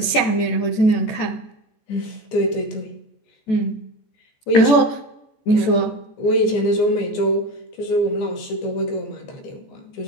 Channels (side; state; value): right; late; 14 ms